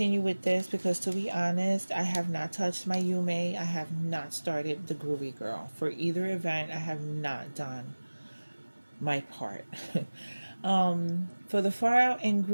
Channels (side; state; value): both; inverted; correlation -1.00